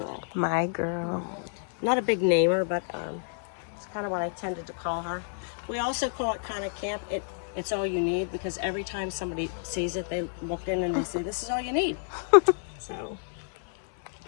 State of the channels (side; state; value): right; silent; 55 dB below the other